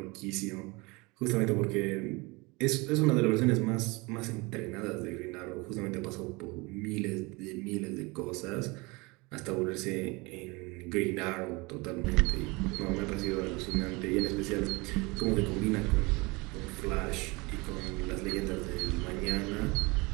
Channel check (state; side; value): quieter; left; 25.7 dB